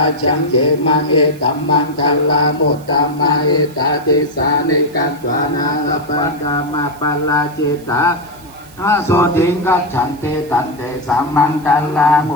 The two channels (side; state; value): right; noise; hiss, 24 dB below the sound